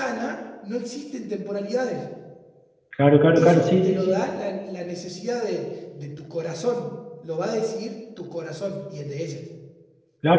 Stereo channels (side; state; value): both; identical; correlation 1.00